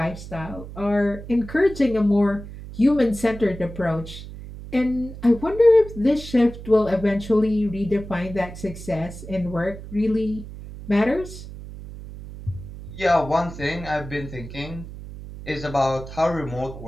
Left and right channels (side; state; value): right; noise; hum, 13 dB below the sound